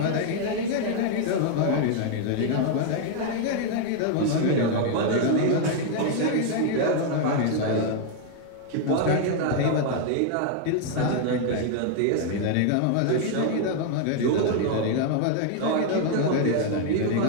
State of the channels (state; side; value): different; both; correlation 0.00